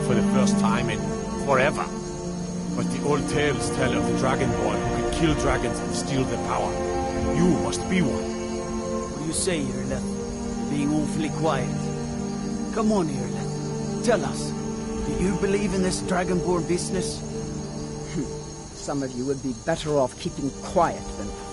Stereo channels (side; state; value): both; identical; correlation 1.00